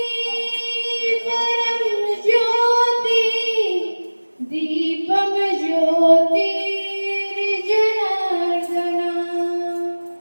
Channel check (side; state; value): both; inverted; correlation -1.00